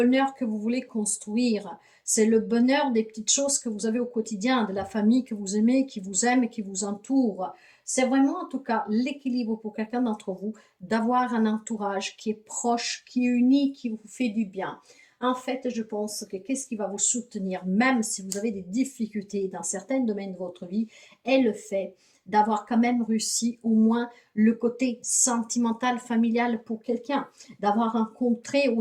que vous voulez construire. C'est le bonheur des petites choses que vous avez au quotidien, de la famille que vous aimez, qui vous aime et qui vous entoure. C'est vraiment en tout cas l'équilibre pour quelqu'un d'entre vous d'avoir un entourage qui est proche, qui est uni, qui vous fait du bien. En fait, je pense que qu'est-ce qui va vous soutenir, même si vous avez des difficultés dans certains domaines de votre vie, est le fait d'avoir quand même réussi au moins le côté sentimental, familial pour quelqu'un, d'avoir rencontré ou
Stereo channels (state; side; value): identical; both; correlation 1.00